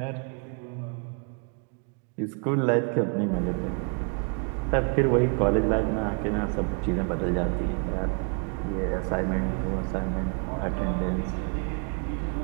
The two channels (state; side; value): quieter; left; 38.7 dB